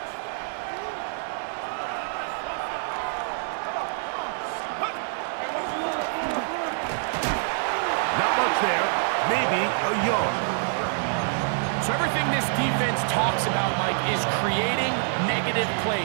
Maybe a yard. So everything this defense talks about, Mike, is creating negative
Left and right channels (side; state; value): left; silent; digital silence